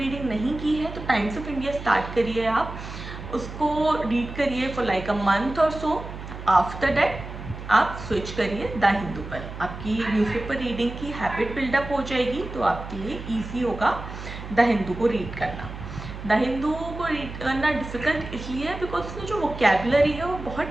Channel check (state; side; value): noise; right; hum, 10 dB below the sound